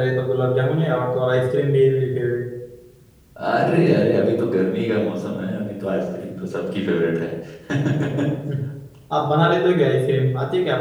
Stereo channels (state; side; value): identical; both; correlation 1.00